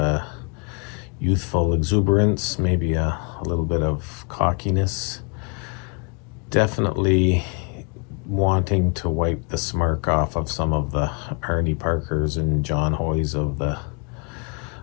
youthful exuberance, maybe a little bit of cockiness. Definitely wanting to wipe the smirk off of some of the Arnie Parkers and John Hoys of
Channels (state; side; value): quieter; right; 35.4 dB